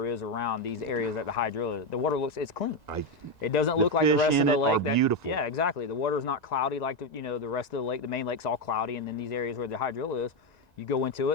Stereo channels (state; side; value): late; right; 1.9 ms